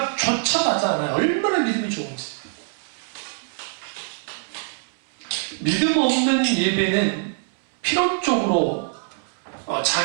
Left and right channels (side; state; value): left; silent; 63 dB below the other